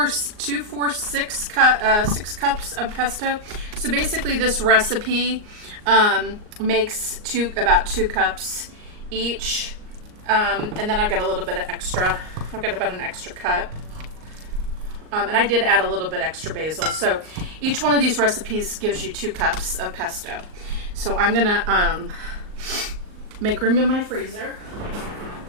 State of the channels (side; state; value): left; late; 38 ms